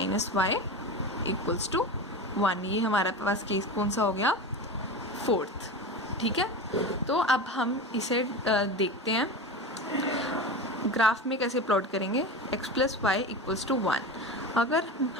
इक्वल्स टू 1। ये हमारा पास केस कौन सा हो गया फोर्थ। ठीक है, तो अब हम इसे देखते हैं ग्राफ में कैसे प्लॉट करेंगे। x plus y equals to 1। अगर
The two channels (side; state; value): both; normal; correlation 0.26